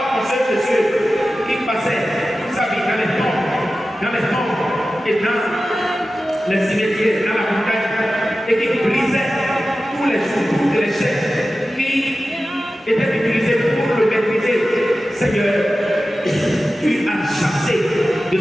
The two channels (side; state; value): both; normal; correlation 0.94